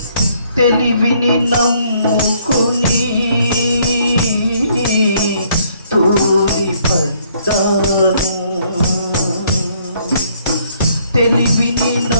తెలివిని నమ్ముకుని తూలిపడ్డాను, తెలివిని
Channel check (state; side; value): inverted; both; correlation -0.65